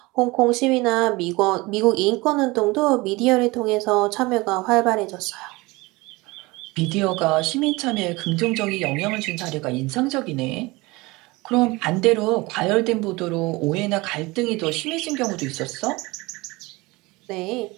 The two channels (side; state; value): left; quieter; 22.8 dB